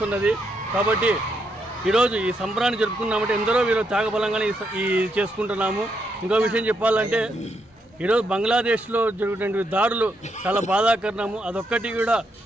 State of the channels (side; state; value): both; normal; correlation 0.78